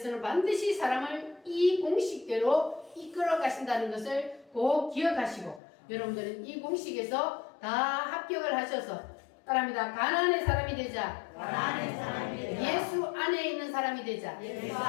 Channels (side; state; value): right; drops out; at 5.6 s